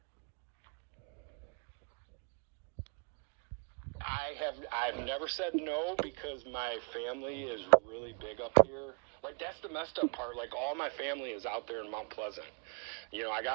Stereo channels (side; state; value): left; quieter; 38.8 dB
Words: I've never said no because my family is really big up here. Like, that's the messed up part. Like, all my family is out there in Mount Pleasant. You know, I